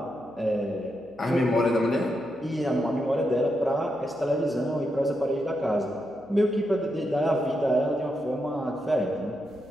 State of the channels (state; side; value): noise; right; hum, 30 dB below the sound